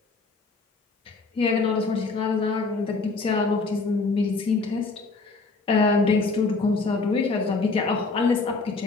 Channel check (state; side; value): quieter; right; 3.9 dB